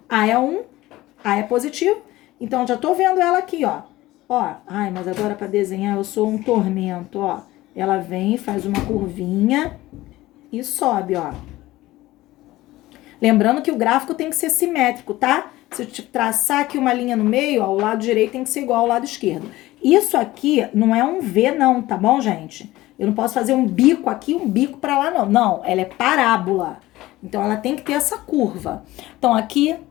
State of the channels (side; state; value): right; quieter; 17.4 dB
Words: A é 1, A é positivo. Então, já tô vendo ela aqui, ó. Ó, ai, mas agora pra desenhar eu sou um tormento, ó. Ela vem, faz uma curvinha e sobe, ó. Lembrando que o gráfico tem que ser simétrico, tá? Se eu te traçar aqui uma linha no meio, ó, o lado direito tem que ser igual ao lado esquerdo. Isso aqui não é um V, não, tá bom, gente? Eu não posso fazer um bico aqui, um bico pra lá, não. Não, ela é parábola. Então, ela tem que ter essa curva. Então, aqui